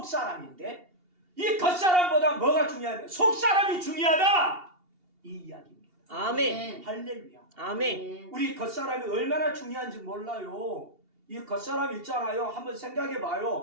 이 겉사람보다 뭐가 중요하냐? 속사람이 중요하다! 이 이야기입니다. 아멘. 할렐루야. 아멘. 우리 겉사람이 얼마나 중요한지 몰라요. 이 겉사람 있잖아요. 한번 생각해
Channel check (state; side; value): late; left; 2.8 ms